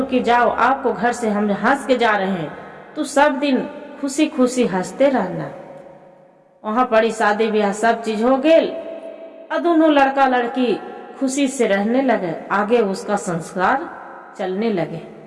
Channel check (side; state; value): both; identical; correlation 1.00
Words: की जाओ, आपको घर से हम हंस के जा रहे हैं, तो सब दिन खुशी खुशी हंसते रहना। वहां पड़ी शादी ब्याह सब चीज हो गए, और दोनों लड़का लड़की खुशी से रहने लगे, आगे उसका संस्कार चलने लगे।